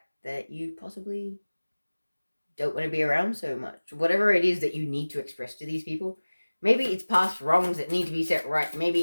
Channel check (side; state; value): both; inverted; correlation -1.00